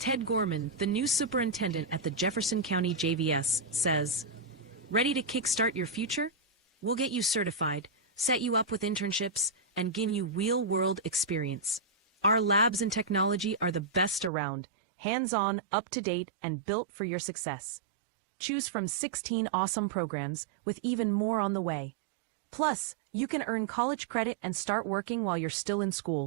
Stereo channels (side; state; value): left; drops out; at 14.3 s